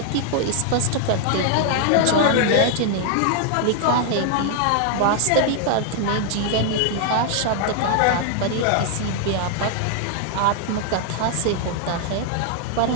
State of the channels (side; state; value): both; different; correlation 0.00